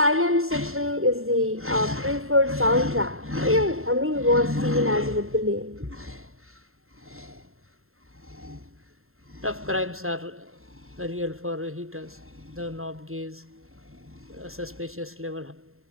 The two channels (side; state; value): left; late; 0.61 ms